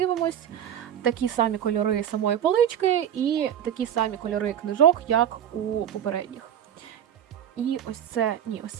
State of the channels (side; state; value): left; quieter; 9.9 dB